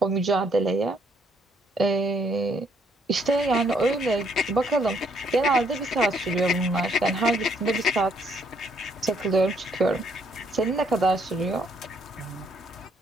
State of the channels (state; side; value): normal; both; correlation 0.68